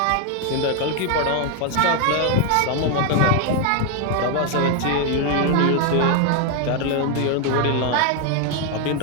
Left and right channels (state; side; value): different; both; correlation 0.01